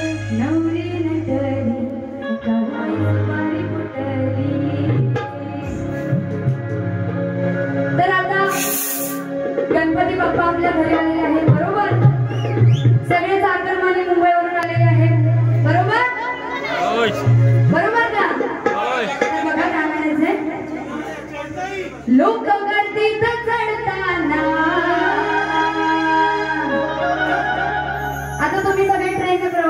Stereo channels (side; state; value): both; identical; correlation 1.00